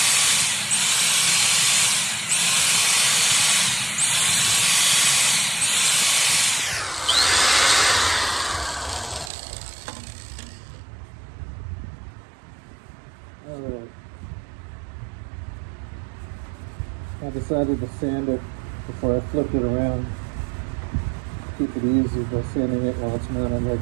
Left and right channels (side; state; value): left; drops out; at 9.3 s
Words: I decided to sand it before I flipped it around. Keep it easy by sanding it while it's mounted